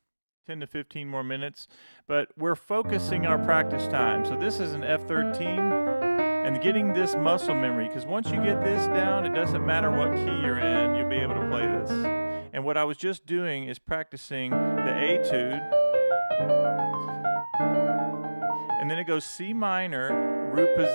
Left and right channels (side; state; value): both; inverted; correlation -1.00